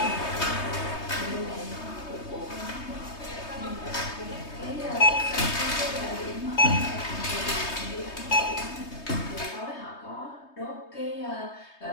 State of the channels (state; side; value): late; right; 3.2 ms